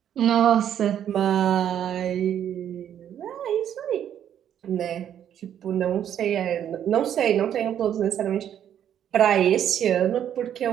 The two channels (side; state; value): left; quieter; 9.9 dB